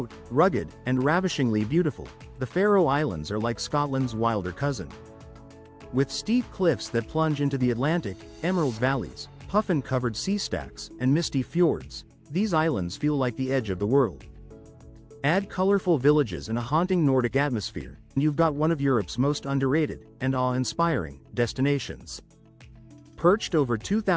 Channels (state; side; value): identical; both; correlation 1.00